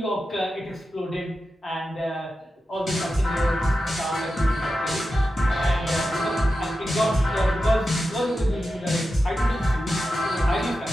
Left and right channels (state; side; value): normal; both; correlation 0.91